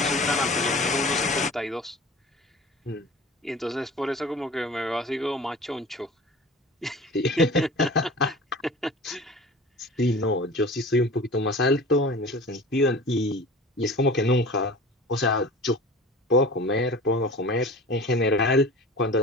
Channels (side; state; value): both; normal; correlation 0.39